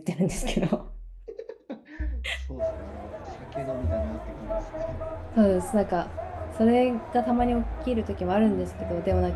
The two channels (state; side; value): identical; both; correlation 1.00